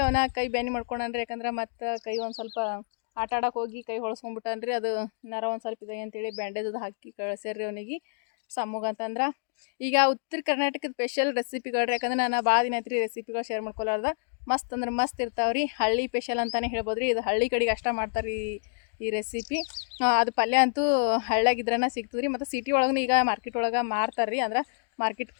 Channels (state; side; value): silent; right; digital silence